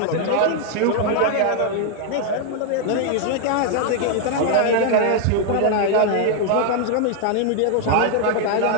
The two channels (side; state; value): both; different; correlation 0.00